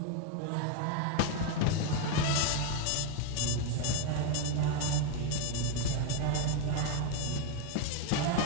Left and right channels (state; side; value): different; both; correlation 0.02